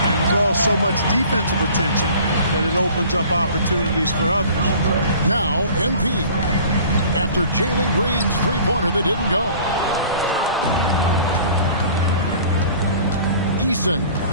draws so much defensive attention that it opens up opportunities for others. Now, MP. After Jalen Green's three-pointer that didn't go. Eason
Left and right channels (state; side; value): inverted; both; correlation -0.47